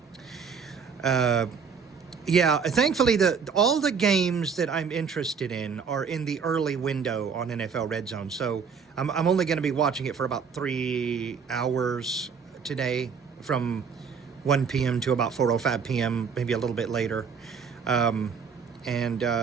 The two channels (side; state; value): left; quieter; 6.1 dB